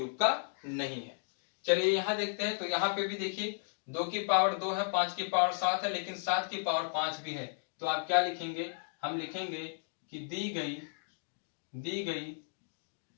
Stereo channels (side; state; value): right; silent; digital silence